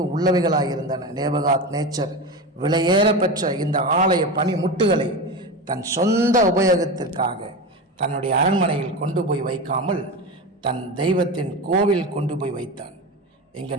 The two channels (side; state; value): both; normal; correlation 0.23